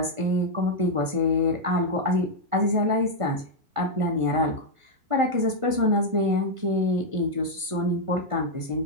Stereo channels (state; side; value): late; left; 1.5 ms